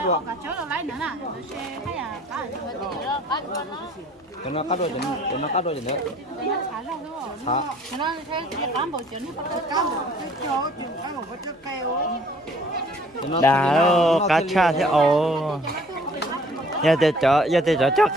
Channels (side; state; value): both; normal; correlation 0.56